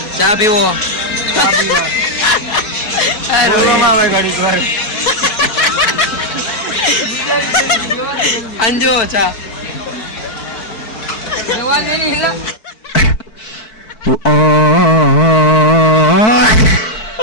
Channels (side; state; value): right; late; 4.6 ms